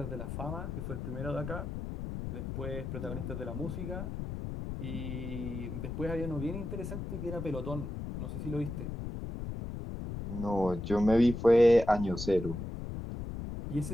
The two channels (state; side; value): noise; left; rumble, 6 dB below the sound